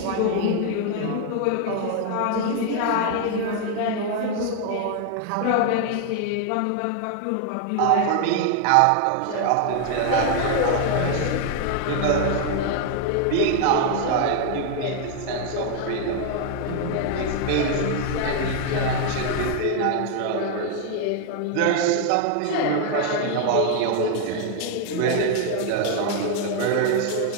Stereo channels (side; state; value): both; different; correlation 0.00